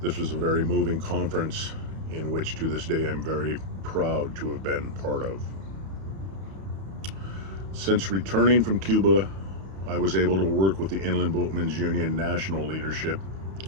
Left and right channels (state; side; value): late; left; 31 ms